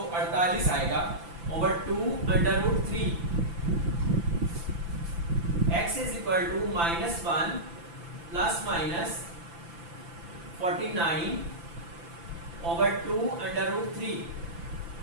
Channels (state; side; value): late; left; 5.9 ms